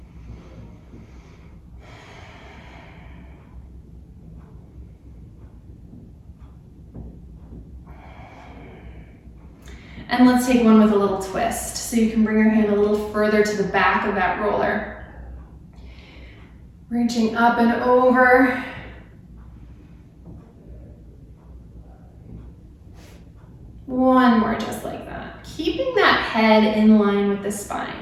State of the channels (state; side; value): identical; both; correlation 1.00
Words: And let's take one with a little twist. So you can bring your hand a little further to the back of that roller. Reaching up and over. One more just like that. Keeping that head in line with the